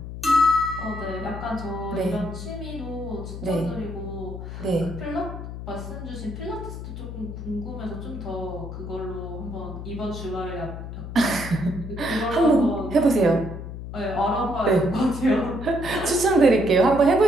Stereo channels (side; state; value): left; noise; hum, 9 dB below the sound